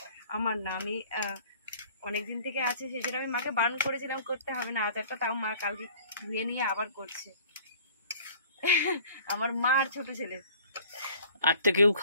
আমার না, আমি অনেকদিন থেকে আছে, সেটা আমি মাকে বারণ করেছিলাম করতে হবে না আচারটা, তাও মা কালকে ধুয়ে নিয়ে আবার করছে। আমার মা আর ছোট ছেলে। আর তো কেউ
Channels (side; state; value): both; inverted; correlation -0.50